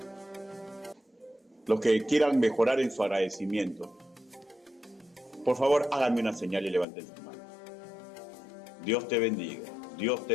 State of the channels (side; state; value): right; drops out; at 6.9 s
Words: Los que quieran mejorar en su agradecimiento, por favor, háganme una señal y levanten su mano. Dios te bendiga, Dios